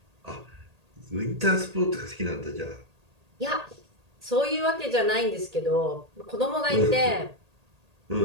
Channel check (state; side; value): late; left; 1.8 ms